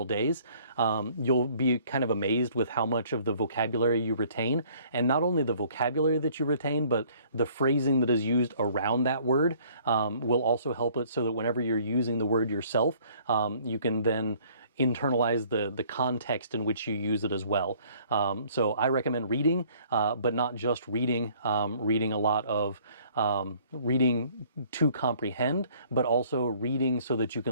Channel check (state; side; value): inverted; both; correlation -0.58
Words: days, you'll be kind of amazed with how much of the vocabulary you retain. And not only the vocabulary that you retain, but the phrasing that is used around that word will also help it so that whenever you're using the word yourself, you can then internalize the context in which you use it as well. So I recommend reading, but not just reading, reading a lot of reading to comprehend, but also reading so that you